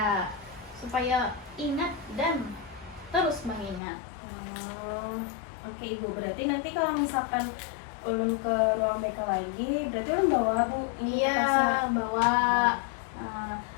supaya ingat dan terus mengingat. Oke ibu, berarti nanti kalau misalkan ulun ke ruang BK lagi, berarti ulun bawa bu ini Iya, kertasnya? bawa.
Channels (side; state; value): right; drops out; at 3.8 s